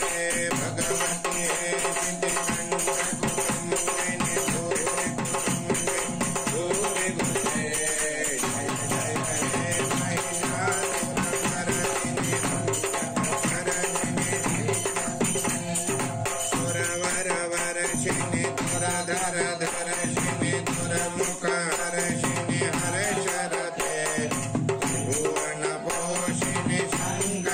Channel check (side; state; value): both; identical; correlation 1.00